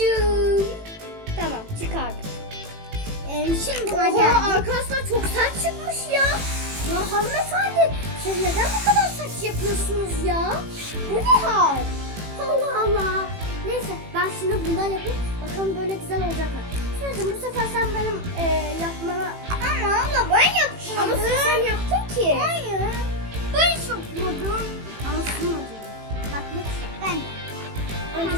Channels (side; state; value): left; late; 18 ms